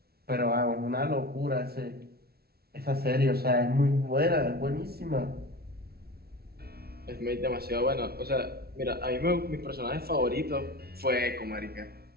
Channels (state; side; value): late; left; 0.45 ms